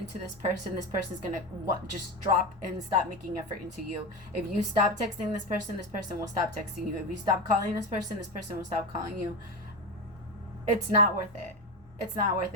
this person's going to just drop and stop making effort into you. If you stop texting this person will stop texting you. If you stop calling this person will stop calling you. It's not worth it. It's not worth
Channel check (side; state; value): both; normal; correlation 0.18